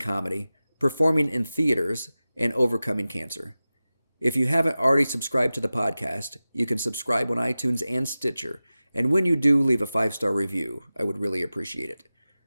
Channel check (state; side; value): inverted; both; correlation -0.96